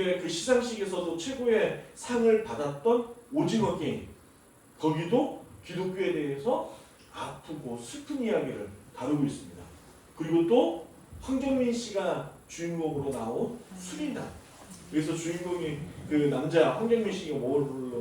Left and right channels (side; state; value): both; identical; correlation 1.00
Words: 그 시상식에서도 최고의 상을 받았던 오징어 게임 거기도 기독교에 대해서 아프고 슬픈 이야기를 다루고 있습니다. 그리고 또 황정민 씨가 주인공으로 나온 수리남 그래서 주인공이 그 남자 황정민 씨가